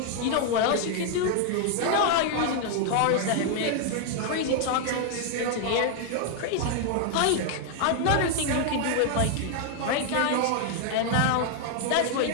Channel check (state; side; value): different; both; correlation 0.00